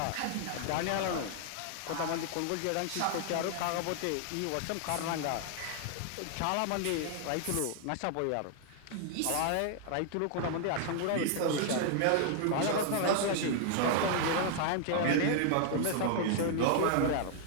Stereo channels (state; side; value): different; both; correlation 0.00